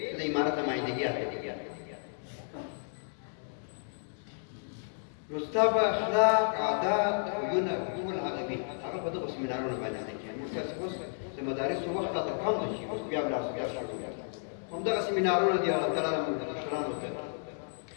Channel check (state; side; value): silent; right; digital silence